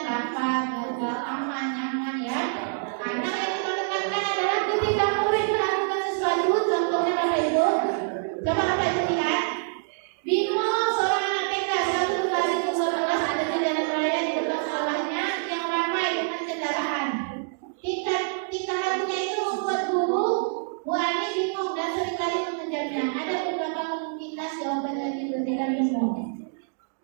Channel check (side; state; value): left; silent; digital silence